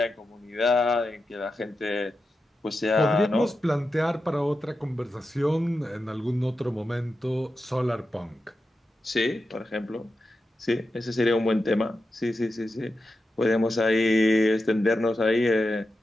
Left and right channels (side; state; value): both; normal; correlation 0.90